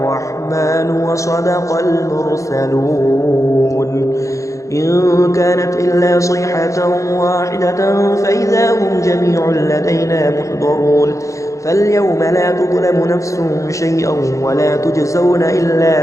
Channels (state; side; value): late; right; 0.15 ms